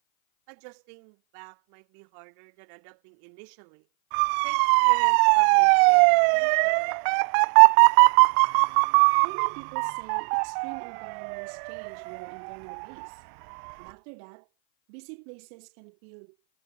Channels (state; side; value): silent; left; 59 dB below the other